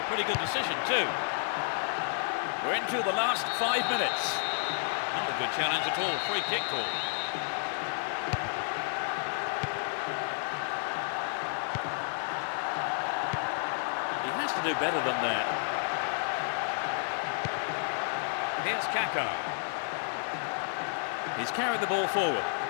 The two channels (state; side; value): silent; right; digital silence